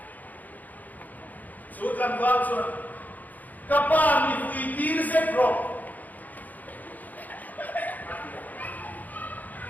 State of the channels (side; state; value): right; late; 0.081 ms